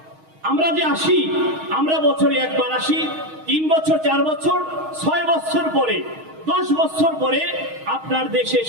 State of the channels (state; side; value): late; left; 6.4 ms